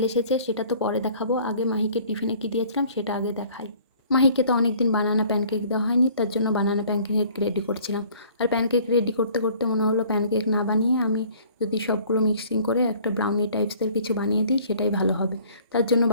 এসেছে, সেটা তো পরে দেখাবো। আগে মাহিকে টিফিনে কী দিয়েছিলাম সেটা আগে দেখাই। মাহিকে তো অনেক দিন বানানা প্যানকেক দেওয়া হয়নি, তার জন্য বানানা প্যানকেক রেডি করছিলাম। আর প্যানকেক রেডি করতে করতে মনে হলো প্যানকেক না বানিয়ে আমি যদি সবগুলো মিক্সিং করে একটা ব্রাউনি টাইপসের কিছু বানিয়ে দিই সেটাই ভালো হবে। তার জন্য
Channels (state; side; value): inverted; both; correlation -0.53